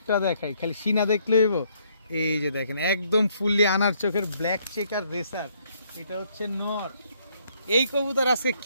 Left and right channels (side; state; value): both; inverted; correlation -0.69